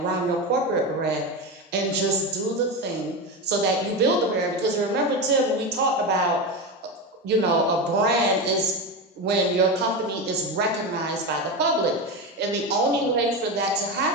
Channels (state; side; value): normal; both; correlation 0.18